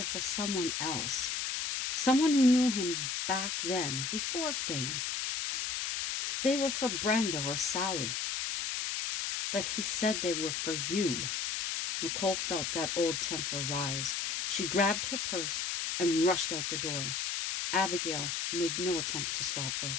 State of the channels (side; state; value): left; noise; hiss, 1 dB below the sound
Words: for someone else. Someone who knew him back then, before fame. They were for Brenda or Sally. But he said they were for you. Nicole felt that old temper rise. She grabbed her purse and rushed out the door. Abigail made no attempt to stop her.